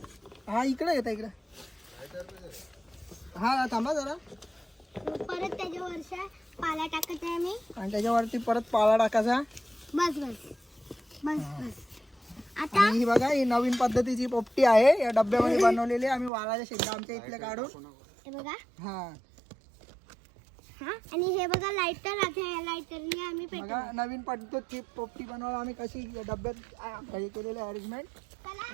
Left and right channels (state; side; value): drops out; left; at 16.3 s